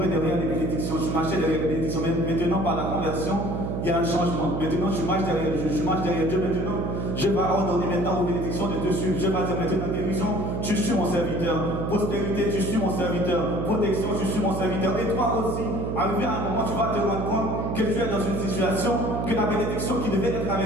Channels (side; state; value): right; noise; hum, 2 dB below the sound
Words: derrière les bénédictions, tu marchais derrière les bénédictions. Mais maintenant, par la conversion, il y a un changement. Maintenant, je marche derrière Dieu. Maintenant, je vais ordonner maintenant aux bénédictions de te suivre. Je vais dire maintenant, guérison, tu suis mon serviteur. Prospérité, tu suis mon serviteur. Protection, tu suis mon serviteur. Et toi aussi, arrivé à un moment, tu vas te rendre compte que tu es dans une situation, que la bénédiction qui devait être